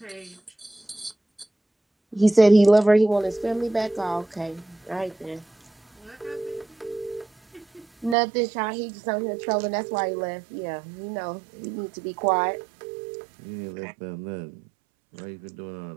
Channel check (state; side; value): drops out; left; at 8.2 s